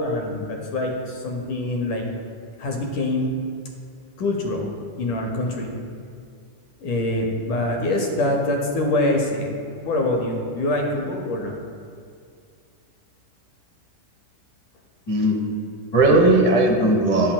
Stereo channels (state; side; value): late; right; 10 ms